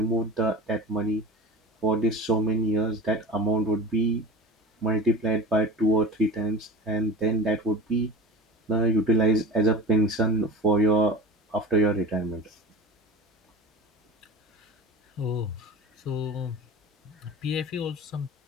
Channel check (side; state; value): both; normal; correlation 0.33